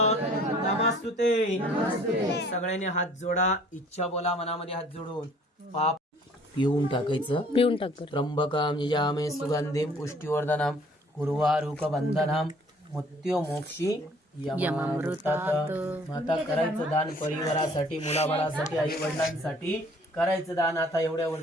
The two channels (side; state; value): both; normal; correlation 0.55